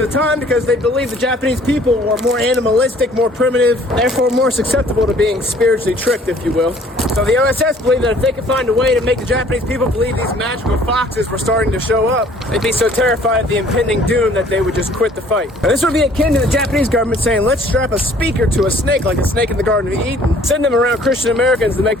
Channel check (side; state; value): both; normal; correlation 0.56